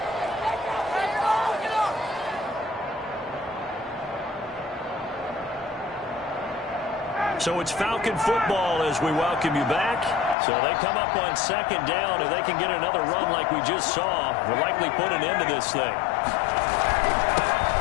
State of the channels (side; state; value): right; drops out; at 10.4 s